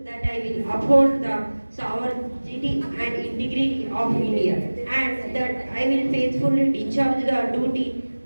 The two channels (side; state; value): both; inverted; correlation -1.00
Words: that I will uphold the sovereignty and integrity of India, and that I will faithfully discharge the duty